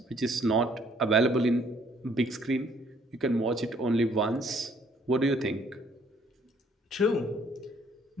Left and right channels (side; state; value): both; normal; correlation 0.63